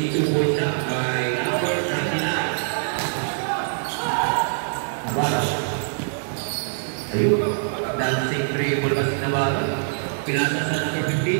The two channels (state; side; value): silent; left; digital silence